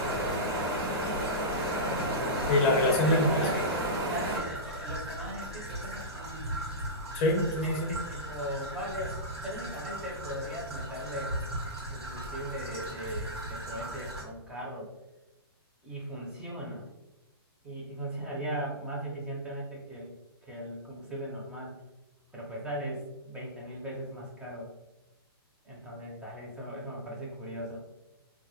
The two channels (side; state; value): both; normal; correlation -0.17